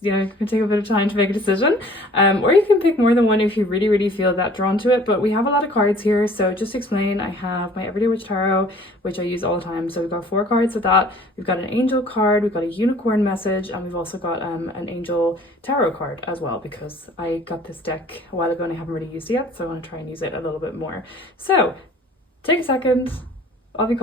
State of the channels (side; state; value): both; normal; correlation 0.51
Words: can take a bit of time to make a decision. Or you can pick more than one if you really, really feel that drawn to it. But we have a lot of cards here, so just to explain, I have my Everyday Witch Tarot, which I use all the time. So we've got 4 cards with that. We've got an angel card, we've got a unicorn message, and we've also got an angel tarot card as well, because I got this deck a while ago and I haven't really used it yet, so I want to try and use it a little bit more. So take a second, I'll be